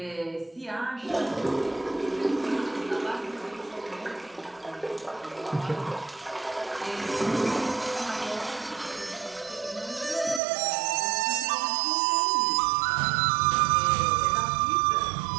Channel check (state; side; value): drops out; left; at 10.4 s